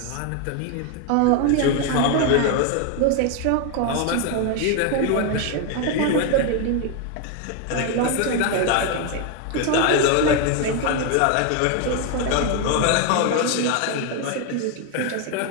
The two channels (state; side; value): different; both; correlation 0.01